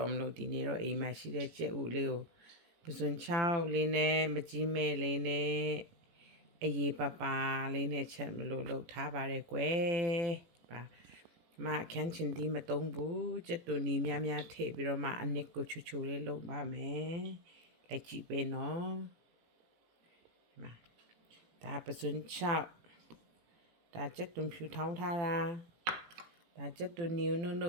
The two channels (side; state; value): left; late; 18 ms